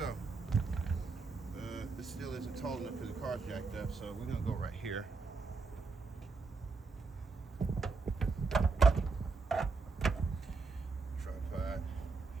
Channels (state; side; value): quieter; left; 4.3 dB